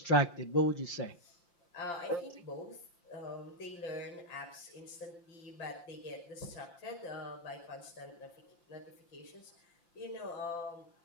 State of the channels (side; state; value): right; late; 5.8 ms